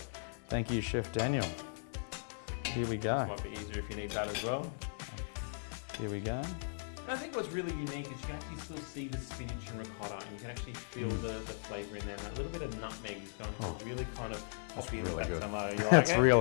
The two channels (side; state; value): right; silent; 53 dB below the other